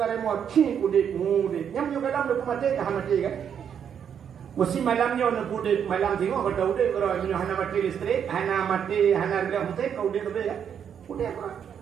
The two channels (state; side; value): quieter; left; 8.1 dB